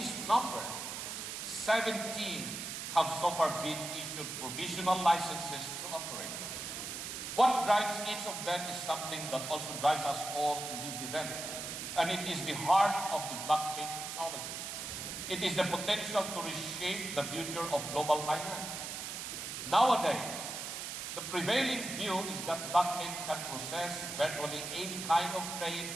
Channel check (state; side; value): noise; right; hiss, 6 dB below the sound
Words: number, 17 have so far been issued provisional licenses to operate. What drives each of them is something that also drives us all in this event, and it is the heart of the blockchain technology. It is the potential to reshape the future of global finance. Nowadays, the prevailing view is that blockchain can process virtually any kind of